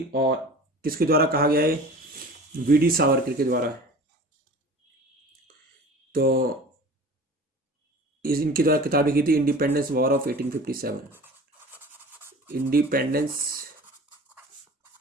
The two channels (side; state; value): both; normal; correlation 0.41